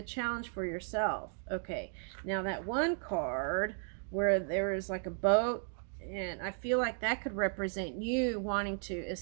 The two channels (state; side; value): silent; left; 54 dB below the other